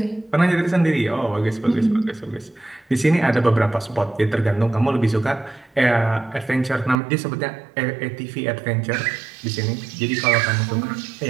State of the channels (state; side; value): drops out; left; at 7.0 s